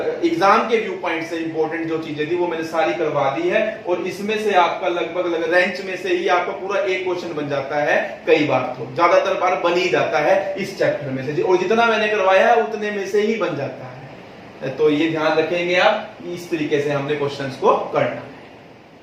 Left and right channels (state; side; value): identical; both; correlation 1.00